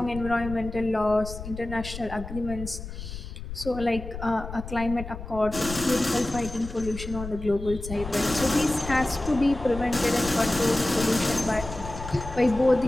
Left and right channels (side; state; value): left; noise; rumble, 10 dB below the sound